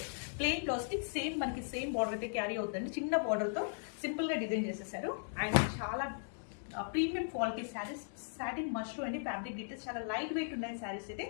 ప్లెయిన్ బ్లౌజ్కి సేమ్ మనకి సేమ్ బార్డర్ అయితే క్యారీ అవుతుంది. చిన్న బార్డర్తో సింపుల్గా డిజైన్ చేసేసారు. అండ్ చాలా premium quality saris. Satin mustard అండి. ఫ్యాబ్రిక్ డీటెయిల్స్ చాలా లైట్ వెయిట్ ఉన్నాయి శారీస్ అయితే.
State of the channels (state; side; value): silent; right; digital silence